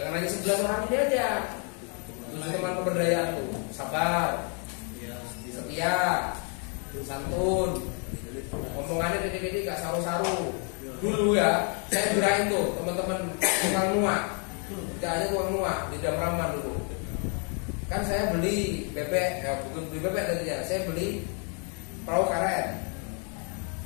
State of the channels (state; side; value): quieter; right; 39.3 dB